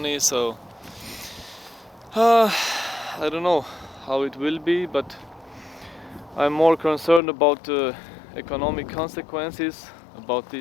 So I don't know how it will be, but I'm more concerned about the economic consequences about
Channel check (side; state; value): right; drops out; at 7.2 s